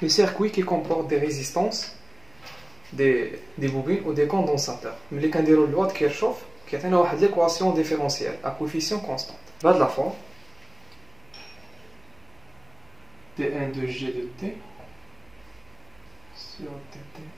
les circuits qui comportent des résistances des bobines ou des condensateurs ملي كنديروا لوا كيرشوف كيعطينا واحد ليكواسيون ديفيرونسيال à coefficient constant. بهاد لا فورم T1 de G de T sur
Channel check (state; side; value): noise; right; hum, 29 dB below the sound